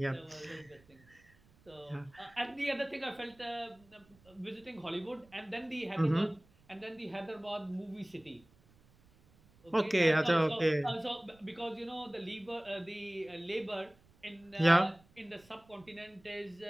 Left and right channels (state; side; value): noise; right; rumble, 29 dB below the sound